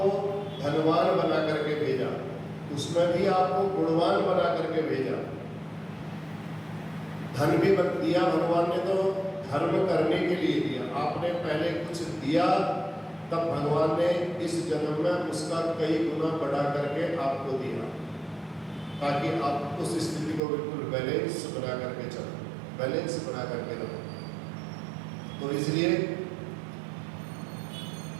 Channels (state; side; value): drops out; left; at 20.4 s